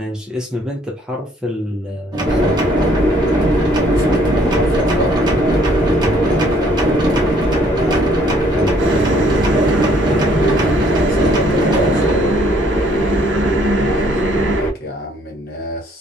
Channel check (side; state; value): both; normal; correlation 0.63